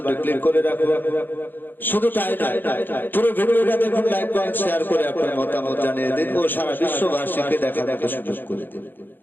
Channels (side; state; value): right; late; 0.093 ms